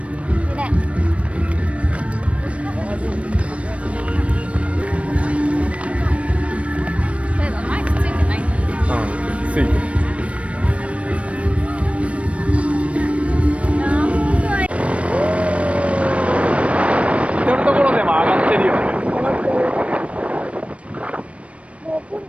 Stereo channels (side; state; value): left; late; 0.063 ms